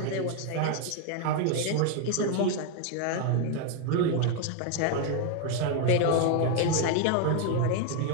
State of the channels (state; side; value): different; both; correlation 0.00